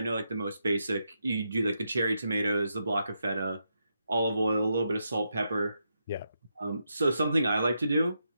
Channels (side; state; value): both; inverted; correlation -0.83